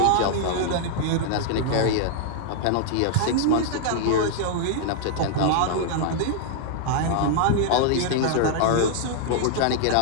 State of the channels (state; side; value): different; both; correlation -0.01